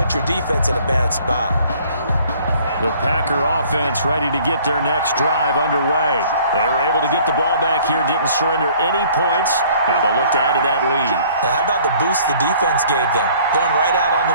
your defense in a bad spot. The Packer offense ready to get their next drive underway. They were able to get the ball back here, didn't surrender any points. Now they'll look to add to that lead. Now, how about the boost the defense gave them? Going right out on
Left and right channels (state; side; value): inverted; both; correlation -0.55